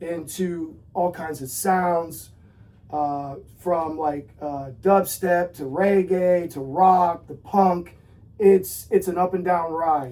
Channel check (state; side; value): identical; both; correlation 1.00